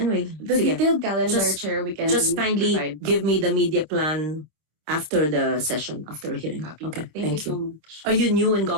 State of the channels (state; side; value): late; left; 26 ms